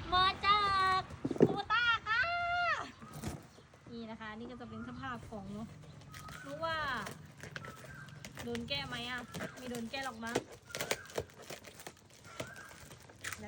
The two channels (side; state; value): both; identical; correlation 1.00